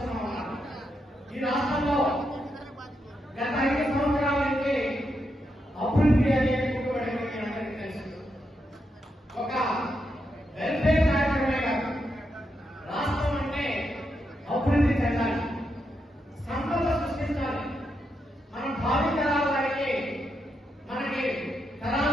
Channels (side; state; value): both; normal; correlation 0.83